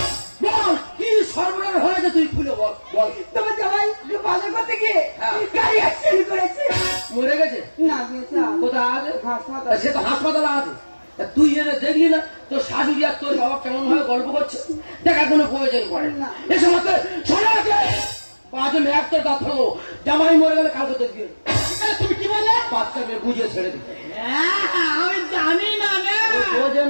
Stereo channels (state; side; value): inverted; both; correlation -1.00